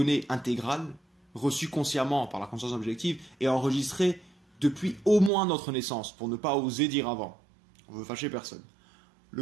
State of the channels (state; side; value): drops out; left; at 5.3 s